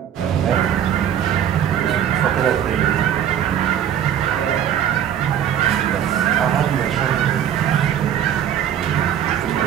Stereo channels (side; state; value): left; quieter; 9.7 dB